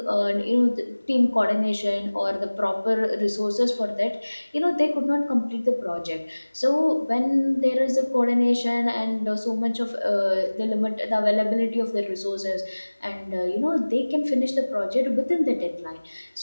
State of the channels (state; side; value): inverted; both; correlation -1.00